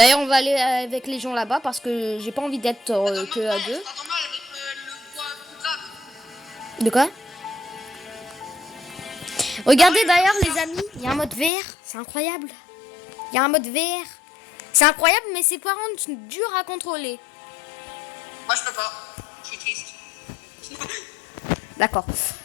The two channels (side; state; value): right; drops out; at 11.5 s